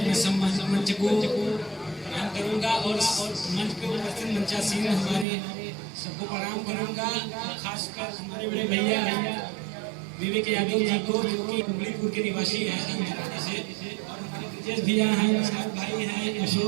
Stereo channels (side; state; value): left; drops out; at 5.2 s